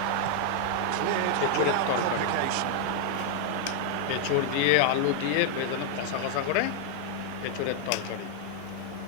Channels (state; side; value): different; both; correlation 0.00